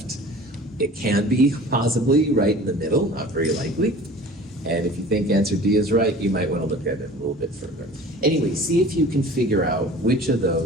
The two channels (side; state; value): both; normal; correlation 0.43